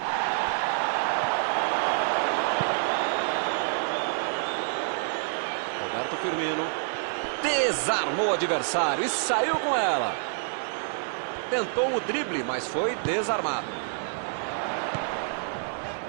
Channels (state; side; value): silent; left; digital silence